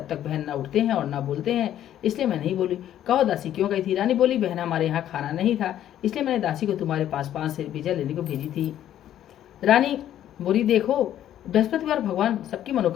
तक बहन न उठते हैं और न बोलते हैं, इसलिए मैं नहीं बोली। कहो दासी क्यों गई थी? रानी बोली, बहन, हमारे यहाँ खाना नहीं था, इसलिए मैंने दासी को तुम्हारे पास 5 सेर बीजा लेने को भेजी थी। रानी बोली, देखो, बृहस्पतिवार भगवान सबकी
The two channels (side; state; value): right; quieter; 11.4 dB